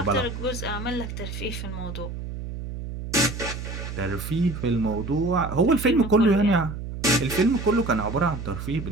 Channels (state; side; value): noise; right; hum, 8 dB below the sound